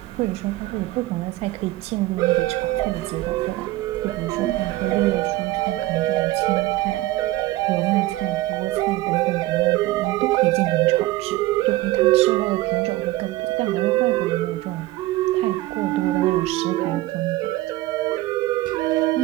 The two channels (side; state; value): left; quieter; 17.9 dB